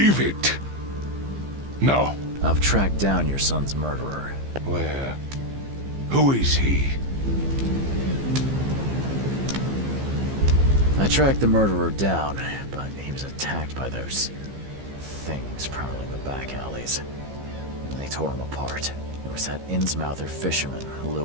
it. No. I've tracked down your son's murderer. Where? Who is he? I tracked the murderer down, but he was attacked by those things prowling the back alleys. They tore him apart. There was that Innsmouther fisherman,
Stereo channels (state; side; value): late; left; 15 ms